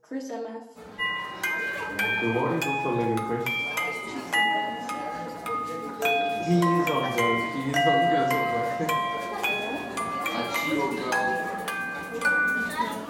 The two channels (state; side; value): identical; both; correlation 1.00